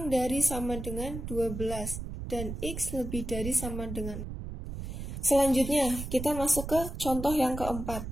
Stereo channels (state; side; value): noise; right; rumble, 7 dB below the sound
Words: dari sama dengan 12 dan x lebih dari sama dengan. Selanjutnya kita masuk ke contoh yang keempat.